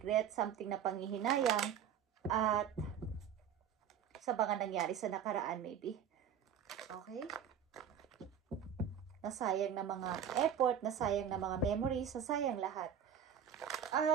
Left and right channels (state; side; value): quieter; left; 8.5 dB